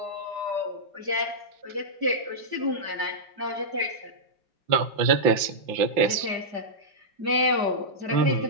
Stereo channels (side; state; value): left; late; 5.8 ms